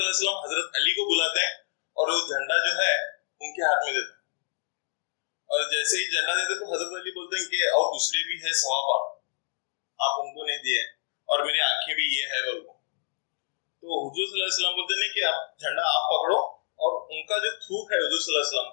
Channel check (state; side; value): silent; right; digital silence